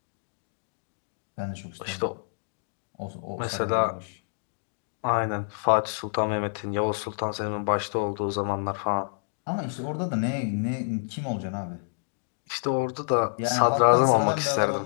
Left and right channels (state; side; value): silent; right; digital silence